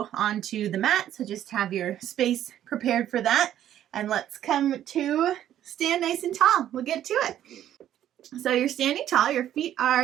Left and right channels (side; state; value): left; quieter; 11.4 dB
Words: onto the mat, so just have your space prepared for that. And let's come to stand nice and tall. We'll get to it. So you're standing tall, your feet